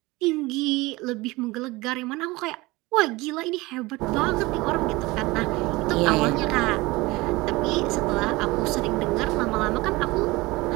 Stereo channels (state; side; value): quieter; left; 21.7 dB